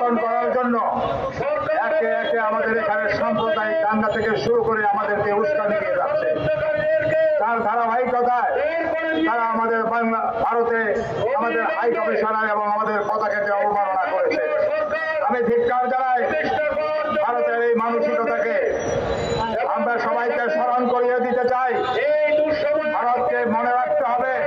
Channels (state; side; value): identical; both; correlation 1.00